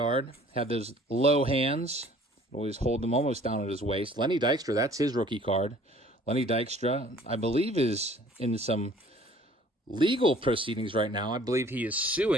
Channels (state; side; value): normal; both; correlation 0.53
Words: Had those low hands. Always hold them almost down at his waist. Lenny Dykstra, that's his rookie card. Lenny Dykstra, I believe, is in some legal proceedings right now. I believe he is